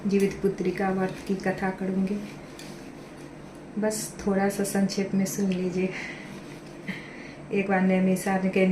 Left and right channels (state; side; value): identical; both; correlation 1.00